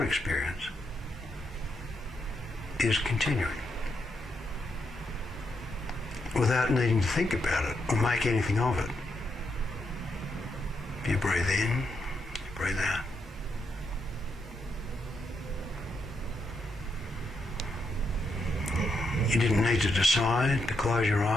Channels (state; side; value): normal; both; correlation 0.81